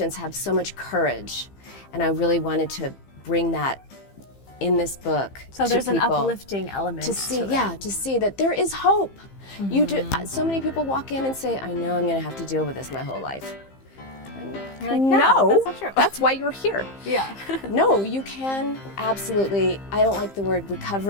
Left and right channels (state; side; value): late; right; 15 ms